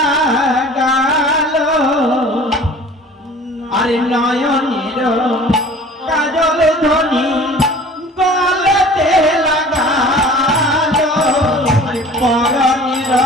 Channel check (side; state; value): both; normal; correlation 0.45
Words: আরে নয়নের কাজল ধ্বনি গলেতে লাগালো, আরে পরনের